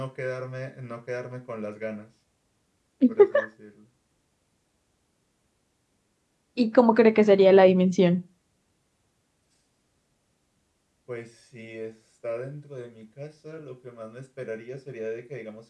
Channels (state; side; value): identical; both; correlation 1.00